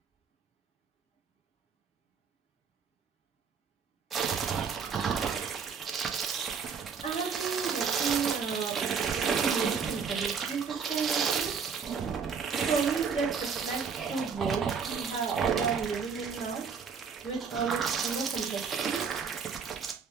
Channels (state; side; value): quieter; left; 6.0 dB